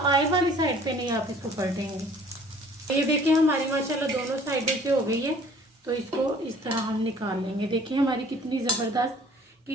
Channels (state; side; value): normal; both; correlation 0.53